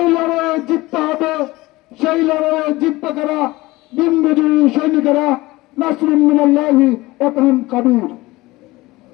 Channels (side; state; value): right; quieter; 20.0 dB